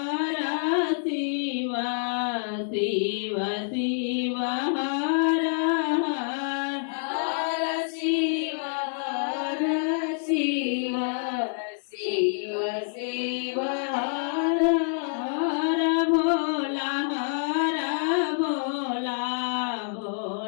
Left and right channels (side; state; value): right; silent; digital silence